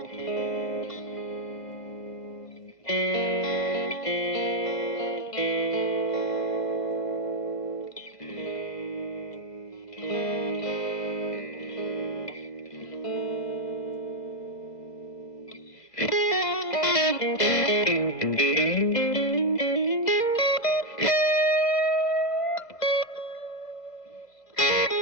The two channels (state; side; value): late; right; 2.0 ms